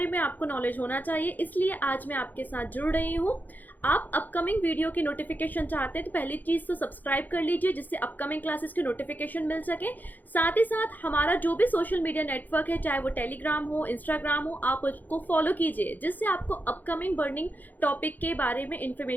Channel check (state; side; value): late; right; 0.084 ms